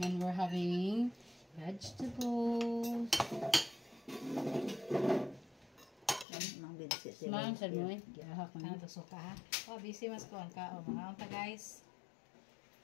and we're having vegetables. Smahan sa mo eh. Gihahak mo. Ano to suka ha? Oh, busy mas kuhan ka. Oh, mga unta guys.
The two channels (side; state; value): right; drops out; at 6.2 s